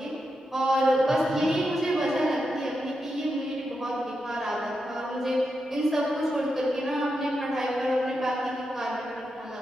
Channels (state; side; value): normal; both; correlation 0.86